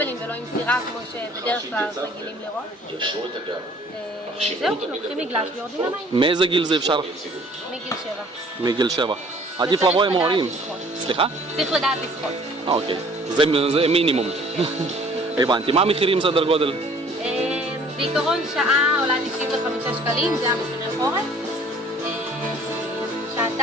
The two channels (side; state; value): both; normal; correlation 0.54